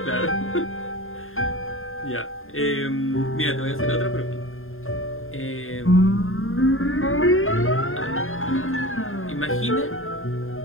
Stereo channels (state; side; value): late; right; 0.60 ms